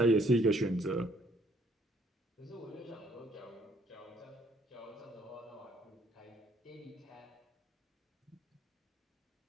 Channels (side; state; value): both; normal; correlation 0.65